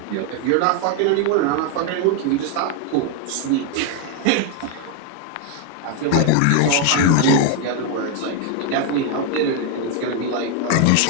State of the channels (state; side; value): different; both; correlation 0.01